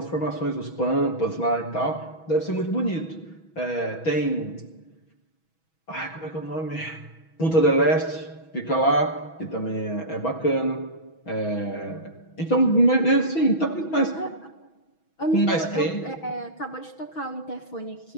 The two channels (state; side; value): late; right; 6.2 ms